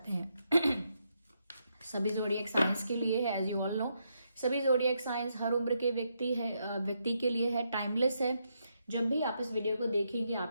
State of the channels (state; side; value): inverted; both; correlation -0.80